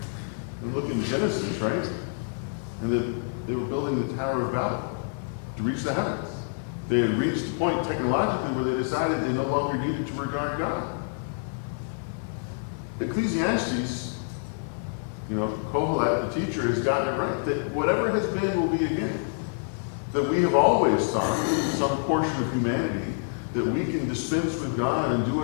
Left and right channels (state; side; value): silent; right; 55 dB below the other